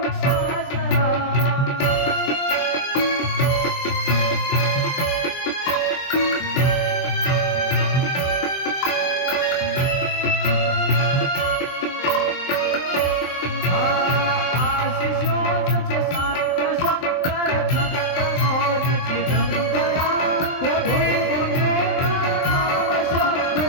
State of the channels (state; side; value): late; right; 23 ms